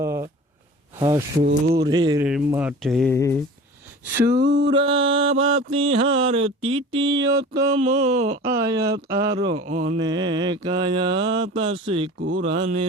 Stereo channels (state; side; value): normal; both; correlation 0.40